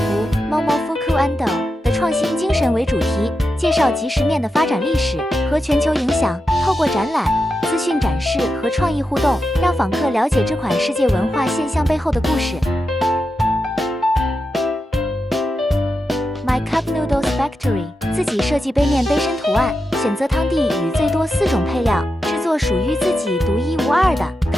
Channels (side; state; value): both; normal; correlation 0.88